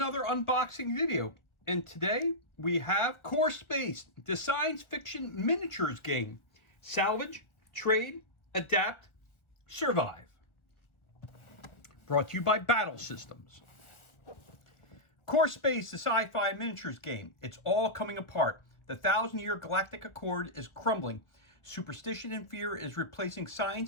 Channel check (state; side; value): late; right; 1.2 ms